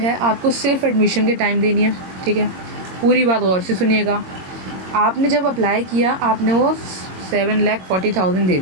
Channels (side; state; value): left; late; 22 ms